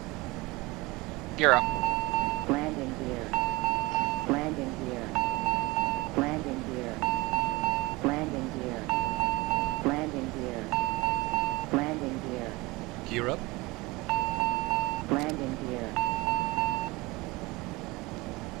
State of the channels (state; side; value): quieter; left; 22.6 dB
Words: Gear up. Landing gear. Landing gear. Landing gear. Landing gear. Landing gear. Landing gear. Gear up. Landing gear.